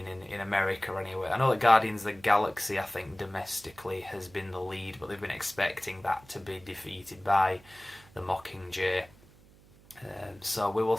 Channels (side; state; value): right; noise; hum, 25 dB below the sound